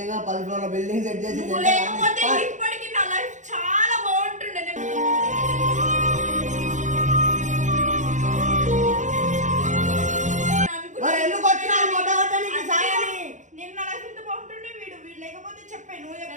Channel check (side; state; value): left; late; 0.35 ms